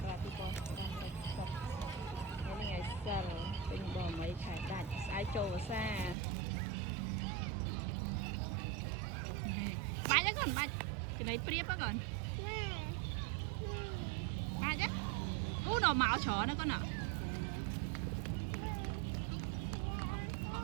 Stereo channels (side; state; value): left; drops out; at 6.2 s